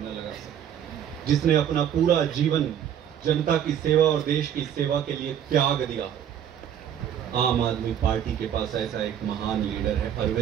लगा सके, जिसने अपना पूरा जीवन जनता की सेवा और देश की सेवा के लिए त्याग दिया हो। आम आदमी पार्टी के पास ऐसा एक महान लीडर है,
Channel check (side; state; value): left; quieter; 9.6 dB